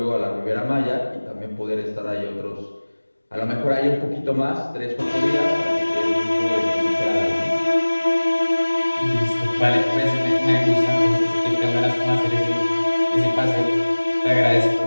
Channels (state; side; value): inverted; both; correlation -1.00